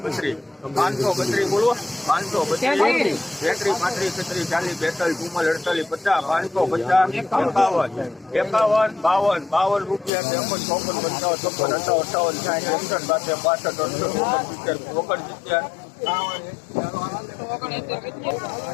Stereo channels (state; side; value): drops out; right; at 10.1 s